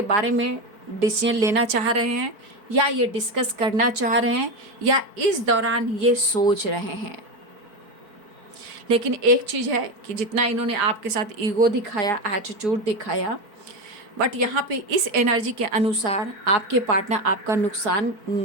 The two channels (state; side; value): late; left; 4.5 ms